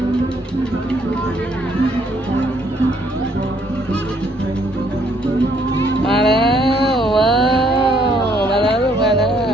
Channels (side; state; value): both; normal; correlation 0.67